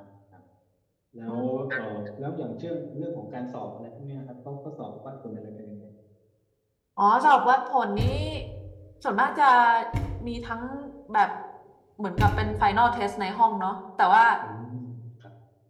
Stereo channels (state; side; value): identical; both; correlation 1.00